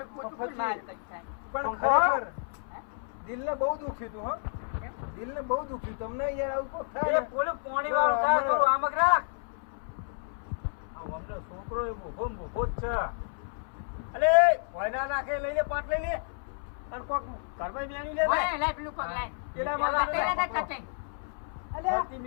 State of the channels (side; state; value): right; silent; 57 dB below the other